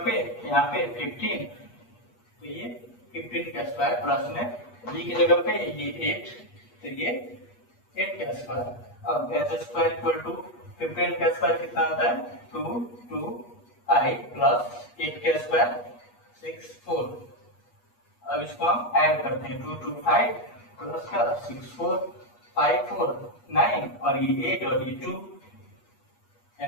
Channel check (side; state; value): right; late; 8.3 ms